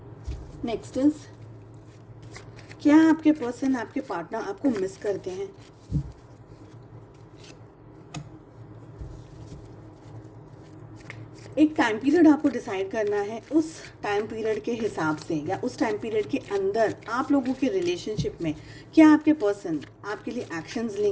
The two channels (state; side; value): identical; both; correlation 1.00